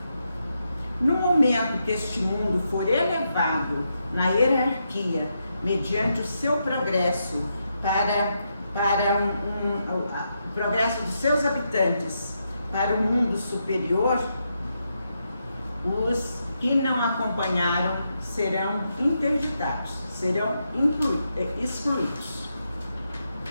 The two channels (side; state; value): both; inverted; correlation -0.83